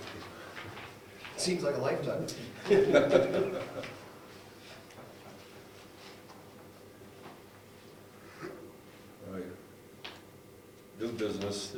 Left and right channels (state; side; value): identical; both; correlation 1.00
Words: Seems like a lifetime. All right. New business,